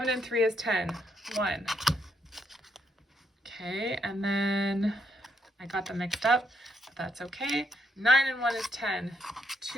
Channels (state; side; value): normal; both; correlation 0.76